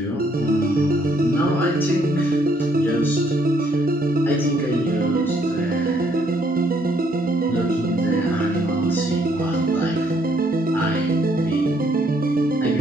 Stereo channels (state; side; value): normal; both; correlation 0.69